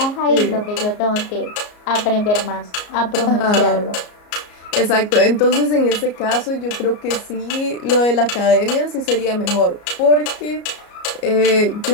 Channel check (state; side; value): late; right; 34 ms